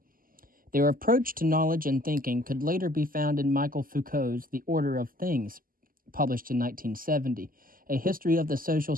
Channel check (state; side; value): late; left; 0.41 ms